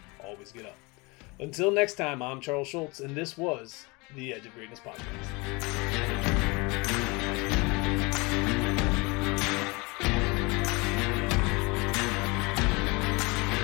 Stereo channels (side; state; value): right; quieter; 26.6 dB